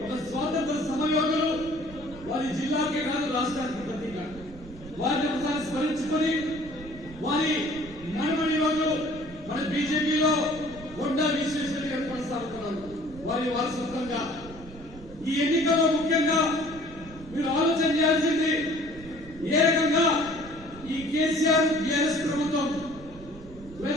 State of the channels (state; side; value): noise; right; rumble, 17 dB below the sound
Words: ఒక స్వాతంత్ర సమరయోధులు. వారి జిల్లాకే కాదు రాష్ట్రానికి ప్రతీక. వారిని ఒకసారి స్మరించుకొని వారి నడమని రోజు మన బీజేపీలో కొండా విశ్వేశ్వర గారు కొనసాగుతున్నారు. వారి వారసత్వంగా ఈ ఎన్నికల్లో ముఖ్యంగా మీరు ఆలోచన చేయాల్సింది ఏ రకంగా ఈ కేసీఆర్ టీఆర్ఎస్ ప్రభుత్వం